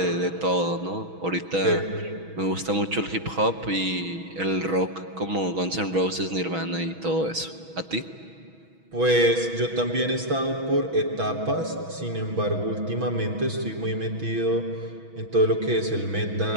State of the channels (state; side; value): late; left; 6.2 ms